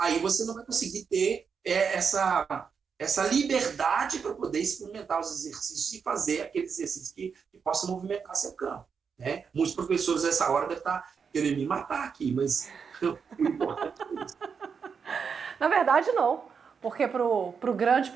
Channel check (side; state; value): left; quieter; 6.2 dB